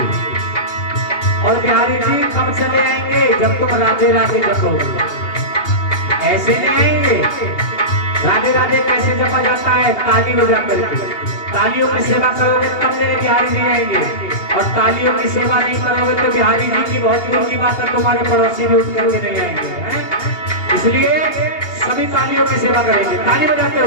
और बिहारी जी कब चले आएंगे? जब तुम राधे राधे जपोगे। ऐसे नहीं आएंगे। राधे राधे कैसे जपा जाता है? ताली बजा करके। तालियों की सेवा करोगे तब मेरे बिहारी जी आएंगे, और तालियों की सेवा नहीं करोगे तो बिहारी जी की बहुत दूर की बात है, तुम्हारे पड़ोसी भी उठ करके नहीं आएंगे। इसलिए सभी तालियों की सेवा करेंगे, ताली बजाते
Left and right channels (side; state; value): right; late; 2.8 ms